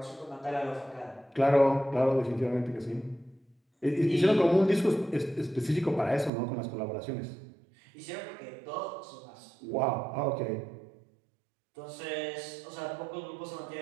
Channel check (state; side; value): drops out; left; at 6.3 s